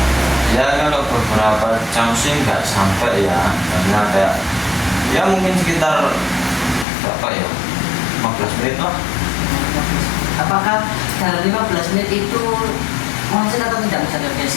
Ya, kalau beberapa jam sih nggak sampai ya, karena kayak ya mungkin sekitar berapa ya, 15 menit lah. Apakah dalam 15 menit itu macet atau tidak misalnya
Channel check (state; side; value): drops out; right; at 6.9 s